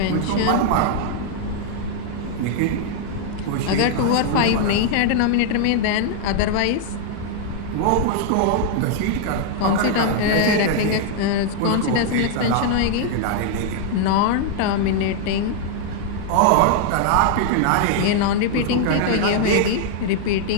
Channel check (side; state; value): both; different; correlation 0.00